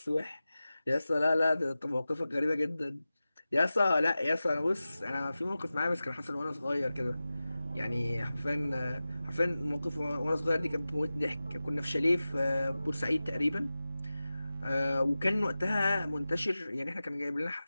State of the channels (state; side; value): inverted; both; correlation -0.95